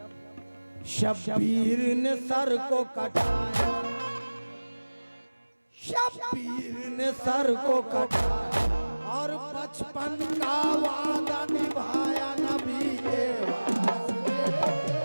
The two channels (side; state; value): both; inverted; correlation -1.00